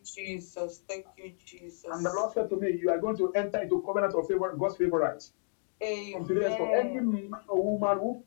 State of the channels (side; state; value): right; silent; digital silence